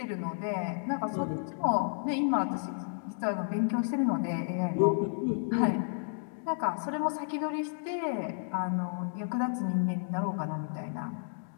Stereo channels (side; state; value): right; silent; digital silence